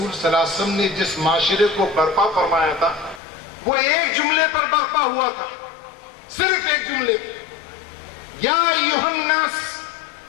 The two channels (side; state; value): right; drops out; at 3.2 s